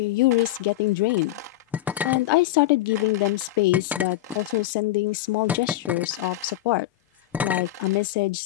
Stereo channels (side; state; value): right; quieter; 14.6 dB